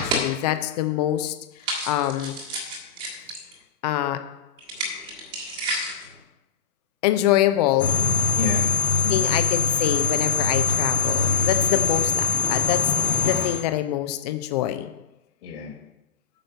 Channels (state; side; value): quieter; right; 6.7 dB